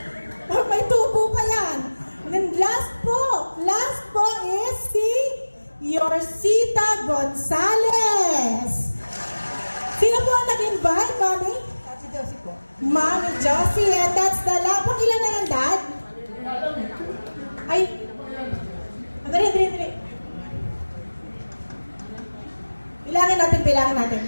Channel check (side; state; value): both; inverted; correlation -1.00